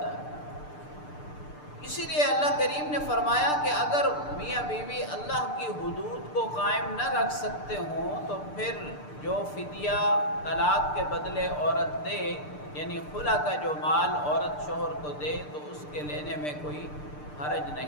ہے۔ اسی لیے اللہ کریم نے فرمایا کہ اگر میاں بیوی اللہ کی حدود کو قائم نہ رکھ سکتے ہوں تو پھر جو فدیہ طلاق کے بدلے عورت دے، یعنی خلا کا جو مال عورت شوہر کو دے، تو اس کے لینے میں کوئی حرج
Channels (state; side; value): late; right; 6.7 ms